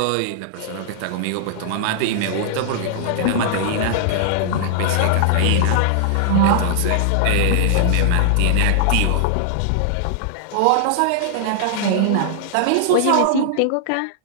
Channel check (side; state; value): both; different; correlation -0.01